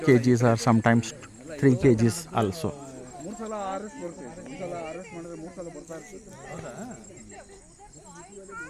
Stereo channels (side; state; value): both; identical; correlation 1.00